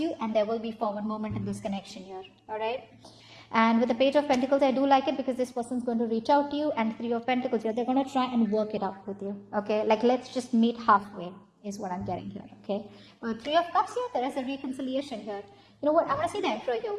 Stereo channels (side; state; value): both; identical; correlation 1.00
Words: and there will be forward movement in this connection here. All right. And with the Page of Pentacles, I do like it because this person's going to reach out to you, and Three of Pentacles here, they're going to try and work it out with you. Okay, like let's just meet halfway is what I'm getting here. Okay, with Three of Cups here, there is a reconciliation here. You know what? I want to see the Emperor here.